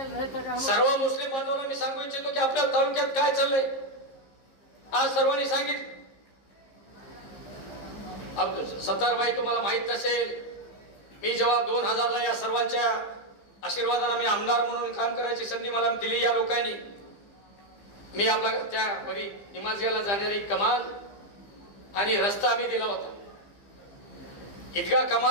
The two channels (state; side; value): late; right; 15 ms